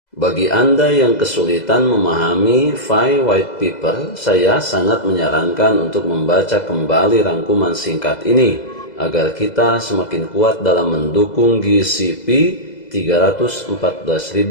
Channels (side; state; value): right; late; 2.0 ms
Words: Bagi Anda yang kesulitan memahami FI White Paper, saya sangat menyarankan untuk membaca kembali rangkuman singkat ini agar kita semakin kuat dalam mendukung GCP